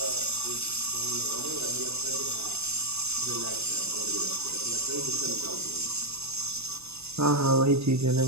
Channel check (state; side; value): late; left; 0.79 ms